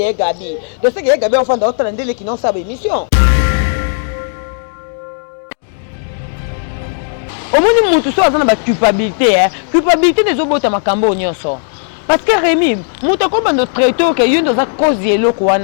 est gabi. De ce qui est gabé enfant d'autres landé qui non ça émission. Vérité. Au moins nous tout ça dans la culpabilité hein. Culpabilité des obota makambo nyonso. Parce que Rémi, muto ko bando traiteur que yo dans cause yelo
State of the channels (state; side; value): silent; right; 70 dB below the other